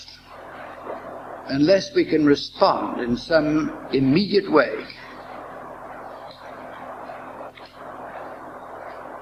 Unless we can respond in some immediate way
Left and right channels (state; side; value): identical; both; correlation 1.00